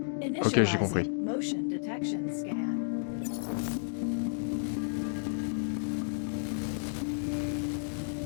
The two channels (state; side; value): silent; right; digital silence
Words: Ok, j'ai compris. Initializing motion detection scan.